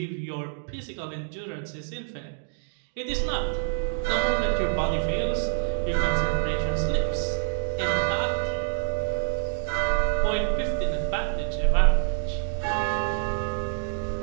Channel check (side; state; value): left; silent; digital silence